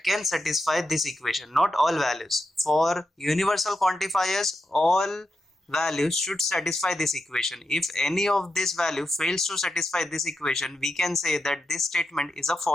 can satisfy this equation. Not all values. For universal quantifiers, all values should satisfy this equation. If any of this value fails to satisfy this equation, we can say that this statement is a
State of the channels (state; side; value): normal; both; correlation 0.87